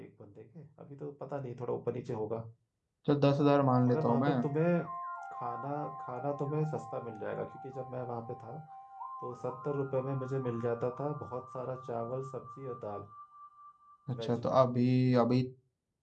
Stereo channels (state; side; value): identical; both; correlation 1.00